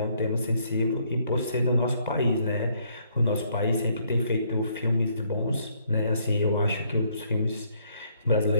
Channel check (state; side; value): inverted; both; correlation -0.68